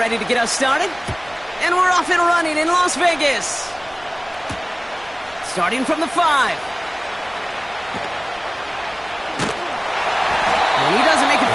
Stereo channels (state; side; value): noise; right; rumble, 26 dB below the sound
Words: to get us started. And we're off and running in Las Vegas. Starting from the 5. And he doesn't make it